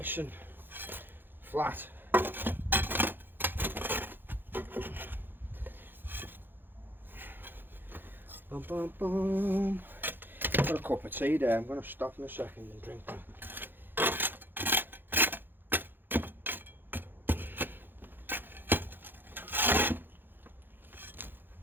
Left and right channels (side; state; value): left; late; 0.097 ms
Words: and flat. Boom, boom, boom. Got a cup of tea there. I'm going to stop in a second and drink that.